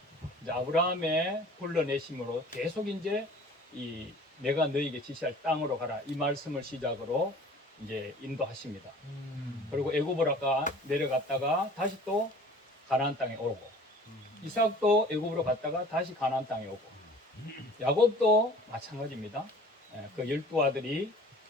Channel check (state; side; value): normal; both; correlation 0.47